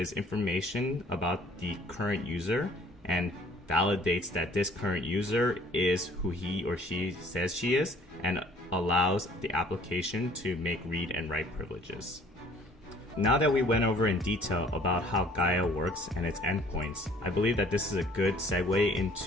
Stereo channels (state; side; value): normal; both; correlation 0.56